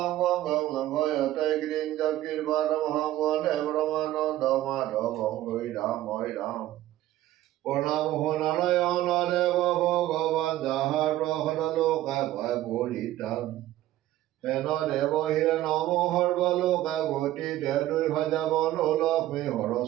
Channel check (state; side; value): quieter; left; 14.6 dB